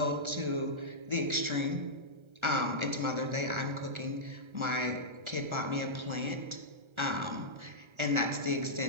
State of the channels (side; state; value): left; late; 1.3 ms